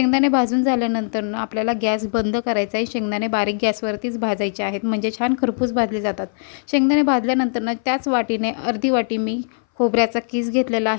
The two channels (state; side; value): silent; right; 60 dB below the other